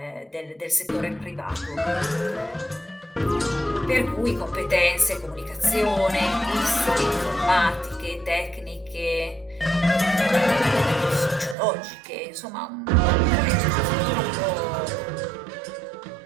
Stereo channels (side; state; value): left; drops out; at 11.6 s